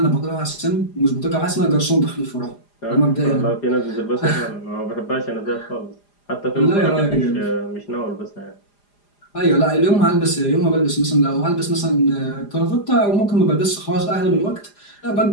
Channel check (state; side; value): late; right; 4.9 ms